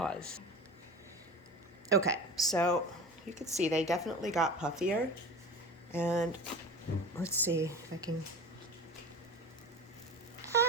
Okay, so you can see they definitely got puffier. And let's see if I can...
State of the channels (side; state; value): both; normal; correlation 0.33